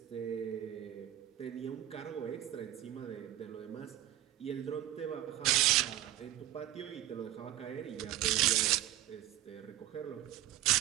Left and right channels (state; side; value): quieter; left; 13.5 dB